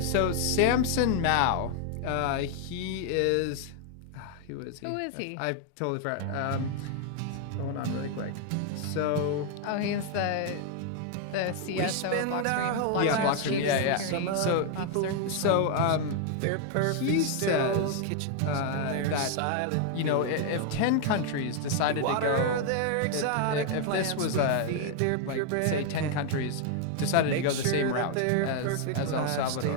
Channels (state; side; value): different; both; correlation 0.00